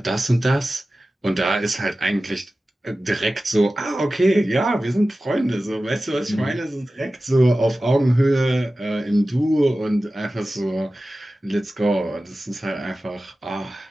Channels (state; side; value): normal; both; correlation 0.95